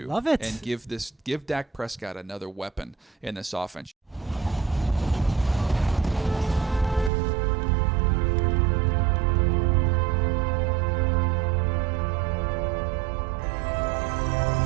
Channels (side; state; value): left; drops out; at 7.1 s